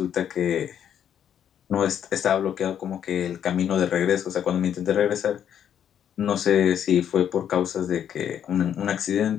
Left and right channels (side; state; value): right; quieter; 9.3 dB